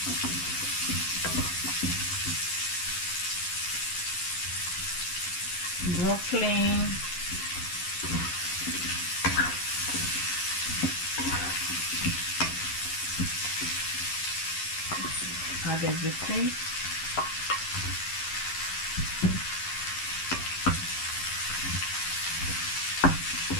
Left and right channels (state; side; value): late; right; 11 ms